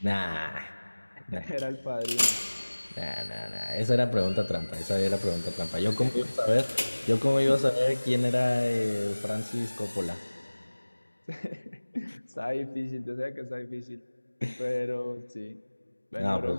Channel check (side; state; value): both; inverted; correlation -1.00